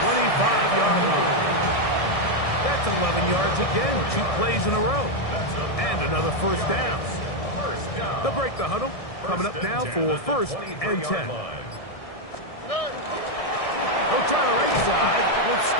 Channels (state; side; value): late; right; 1.6 ms